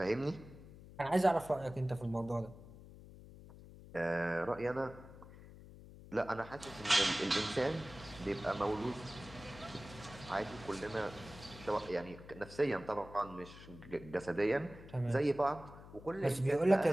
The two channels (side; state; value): left; noise; hum, 17 dB below the sound